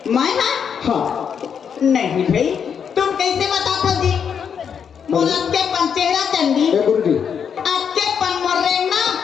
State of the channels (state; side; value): quieter; right; 7.3 dB